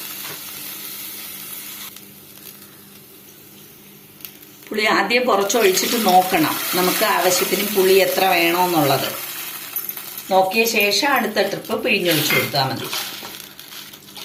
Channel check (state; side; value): identical; both; correlation 1.00